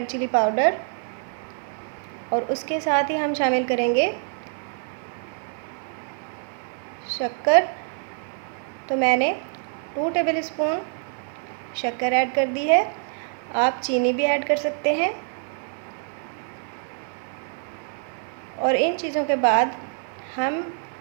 chilli powder, और उसके साथ ही हम शामिल करेंगे शक्कर। तो मैंने 2 टेबल स्पून शक्कर ऐड कर दी है। आप चीनी भी ऐड कर सकते हैं। और इन चीज़ों के बाद हम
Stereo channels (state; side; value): silent; left; 56 dB below the other